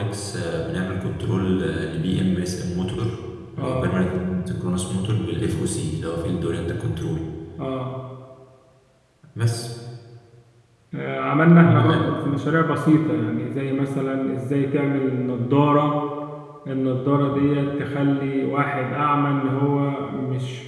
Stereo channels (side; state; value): both; identical; correlation 1.00